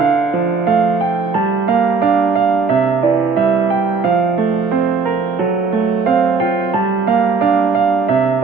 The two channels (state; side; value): quieter; left; 4.6 dB